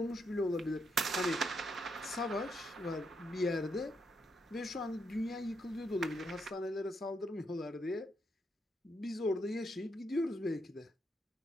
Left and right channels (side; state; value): both; normal; correlation 0.78